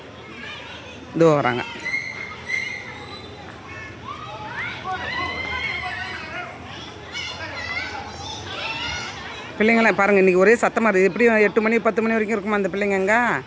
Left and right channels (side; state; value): both; identical; correlation 1.00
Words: இதோ வராங்க. பிள்ளைங்களாம் பாருங்கள் இன்றைக்கி ஒரே சத்தமாக இருக்குது. எப்படியும் 8 மணி 10 மணி வரைக்கும் இருக்குமா இந்த பிள்ளைங்க? எங்கே